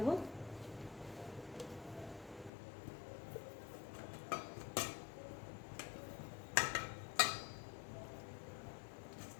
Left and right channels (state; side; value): drops out; right; at 2.5 s